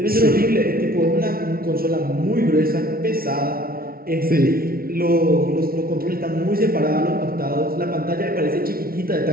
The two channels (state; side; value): late; left; 0.43 ms